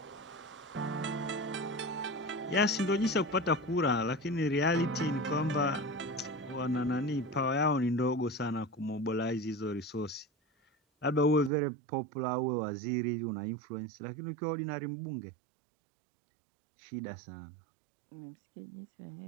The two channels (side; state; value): left; drops out; at 11.5 s